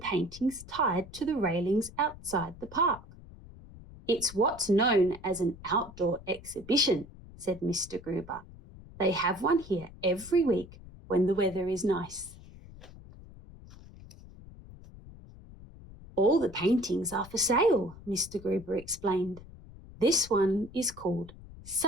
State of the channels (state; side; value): noise; left; rumble, 18 dB below the sound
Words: tied to the railings outside the park. "It's what's known as an outdoor exhibition," said Mr. Gruber. "They have one here every week when the weather is nice." "All the paintings are for sale," Mr. Gruber explained. "This one is called